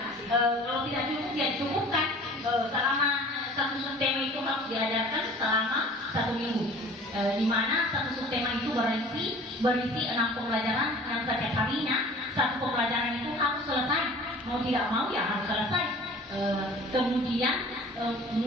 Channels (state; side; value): normal; both; correlation 0.46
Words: Kalau tidak cukup ya cukupkan selama satu subtema itu harus diajarkan selama 1 minggu. Di mana satu subtema itu berisi 6 pembelajaran yang setiap harinya satu pembelajaran itu harus selesai. Mau tidak mau ya harus selesai. Kemudian